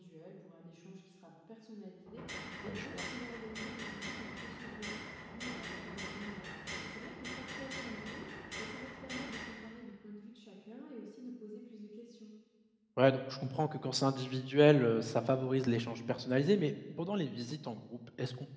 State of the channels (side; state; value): both; identical; correlation 1.00